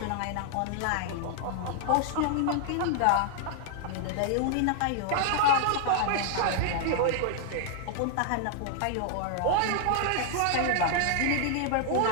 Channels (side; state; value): both; different; correlation -0.01